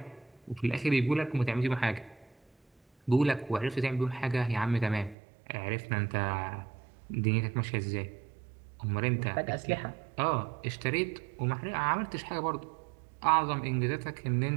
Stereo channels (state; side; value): drops out; left; at 5.2 s